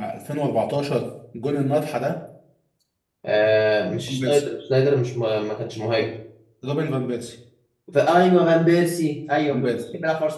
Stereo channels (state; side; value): identical; both; correlation 1.00